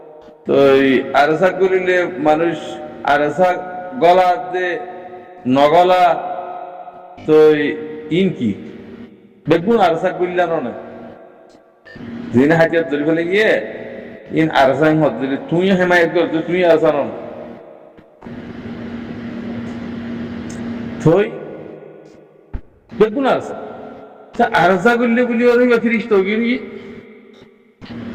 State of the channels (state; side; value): identical; both; correlation 1.00